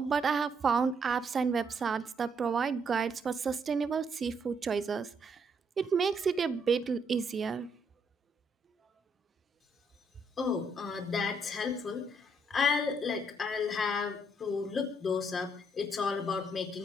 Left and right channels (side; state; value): both; normal; correlation 0.72